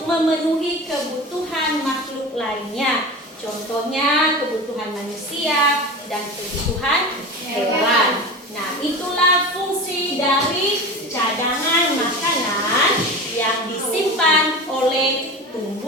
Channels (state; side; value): normal; both; correlation 0.30